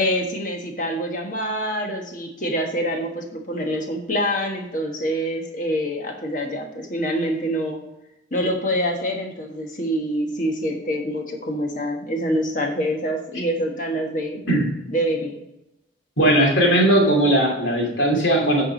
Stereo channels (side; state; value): both; normal; correlation 0.24